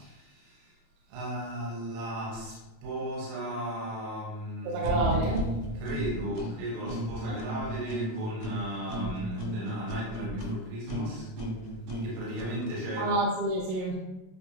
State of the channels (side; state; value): left; late; 27 ms